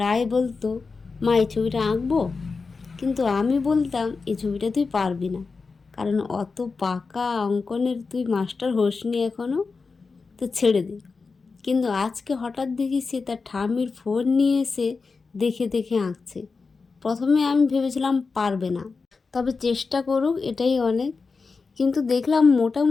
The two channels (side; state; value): right; quieter; 4.5 dB